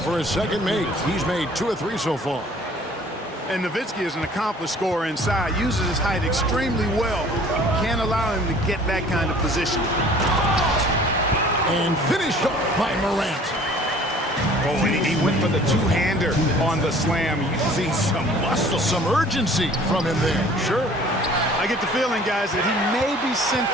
for his second make. He's made 2 of 3 so far. And Nowitzki is an accomplished scorer inside. Uses his height extremely well. Can't allow him to get that kind of position. And finished off by Morant. Oh, and he went for the two-hander on the slam, using some muscle. Some urgency from him there. Sure. I get the feeling, guys, that he may be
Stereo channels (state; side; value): normal; both; correlation 0.51